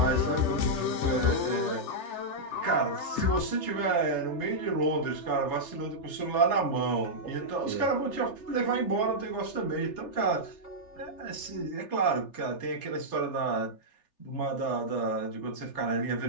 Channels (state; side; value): late; right; 3.4 ms